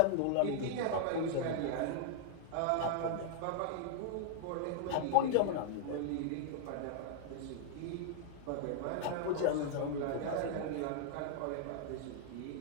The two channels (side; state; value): both; different; correlation -0.01